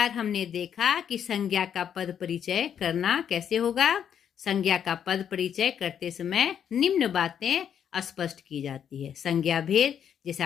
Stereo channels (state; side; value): quieter; right; 8.7 dB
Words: हमने देखा कि संज्ञा का पद परिचय करना कैसे होगा। संज्ञा का पद परिचय करते समय निम्न बातें स्पष्ट की जाती है। संज्ञा भेद,